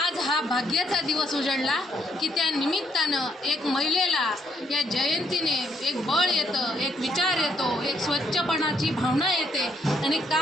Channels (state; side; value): normal; both; correlation 0.72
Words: हा भाग्याचा दिवस उजळला की त्या निमित्तानं एक महिलेला या जयंतीने एक बळ येतं, एक विचार येतो, एक स्वच्छपणाची भावना येते आणि